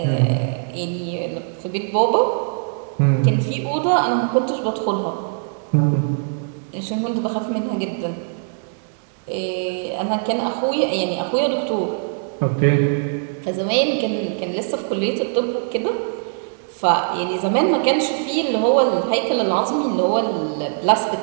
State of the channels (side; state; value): left; silent; 65 dB below the other